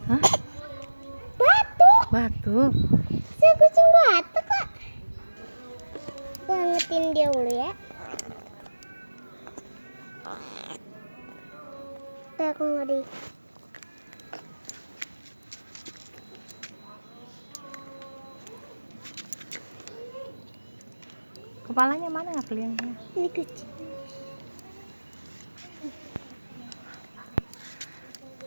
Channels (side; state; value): both; inverted; correlation -1.00